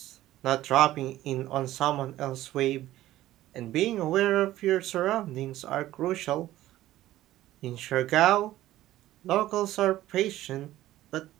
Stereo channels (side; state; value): left; quieter; 14.9 dB